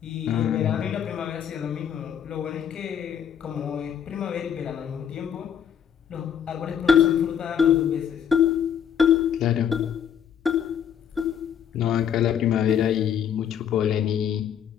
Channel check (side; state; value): right; quieter; 8.5 dB